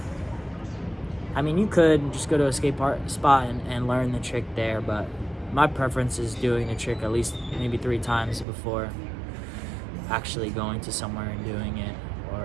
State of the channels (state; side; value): drops out; left; at 8.5 s